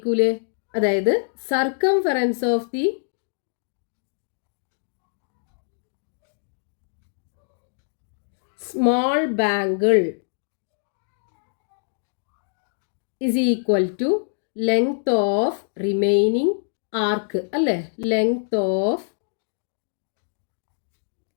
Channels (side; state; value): right; silent; digital silence